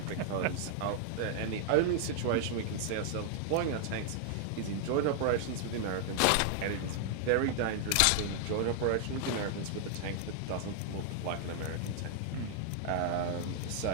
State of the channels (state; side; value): different; both; correlation 0.00